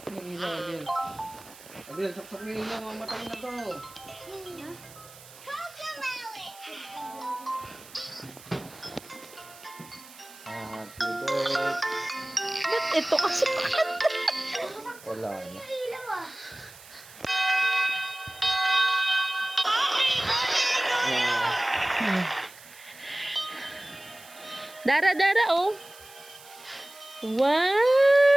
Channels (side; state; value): right; noise; hiss, 20 dB below the sound